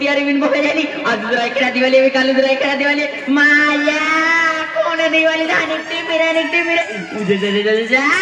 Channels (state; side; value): identical; both; correlation 1.00